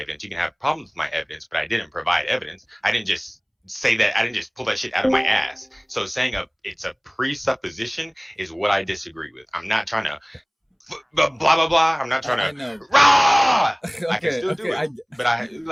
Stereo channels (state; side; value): identical; both; correlation 1.00